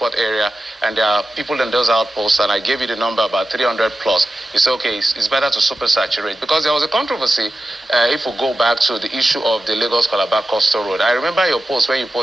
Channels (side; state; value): both; normal; correlation 0.93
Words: area, and there are people in those outposts, and I gave you the number about 300 plus, you say, okay, it's better to supersaturate. Because there was a controversy, if we go back to the issue of the Lagos-Calabar Coastal Road. I remember your post when you